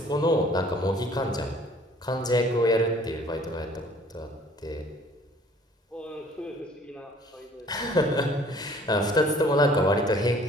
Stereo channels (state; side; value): normal; both; correlation 0.55